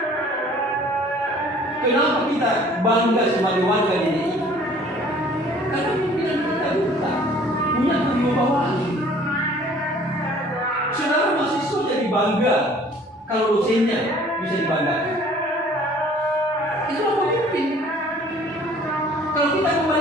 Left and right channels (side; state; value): both; normal; correlation 0.53